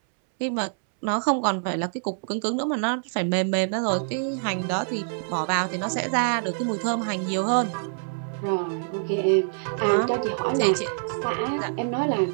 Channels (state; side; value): silent; left; 61 dB below the other